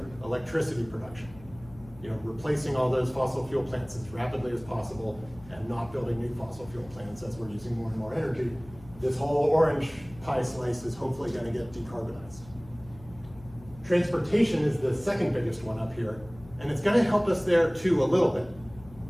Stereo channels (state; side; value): noise; left; hum, 20 dB below the sound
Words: Electricity production. You know, replacing all those fossil fuel plants as rapidly as possible and not building new fossil fuel plants as we're using more and more energy. This whole orange pie slice is hopefully gonna get decarbonized. Transportation is the second biggest one up here, and it's gonna help us there too a little bit.